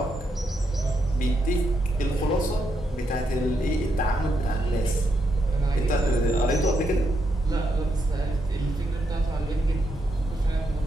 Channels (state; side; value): normal; both; correlation 0.81